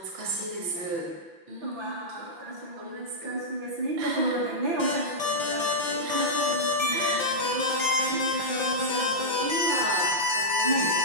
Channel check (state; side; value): late; left; 5.8 ms